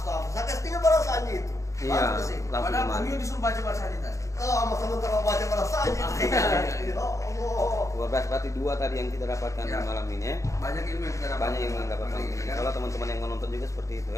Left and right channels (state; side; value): late; right; 0.15 ms